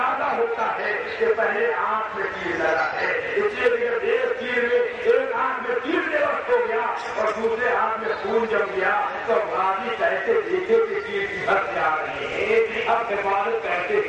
ہوتا ہے کہ پہلے آنکھ میں تیر لگا ہے. اس لیے جب ایک آنکھ میں تیر بے وقت ہو گیا اور دوسرے ہاتھ میں خون جم گیا تو غازی کیسے دیکھے کہ تیر کی حد جا رہے ہیں. اب حفاظت کیسے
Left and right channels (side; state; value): both; identical; correlation 1.00